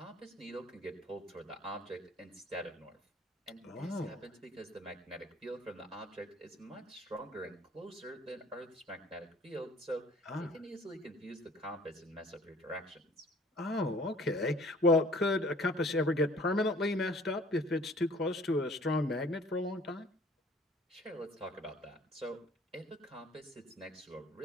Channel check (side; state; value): both; normal; correlation 0.53